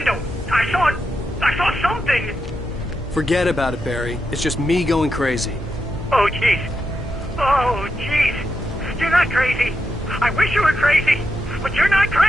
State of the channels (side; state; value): both; normal; correlation 0.85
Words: I saw something. Forget about it, Barry. It's just me going crazy. Oh, jeez. Oh, jeez. You're not crazy. I wish you were crazy, but you're not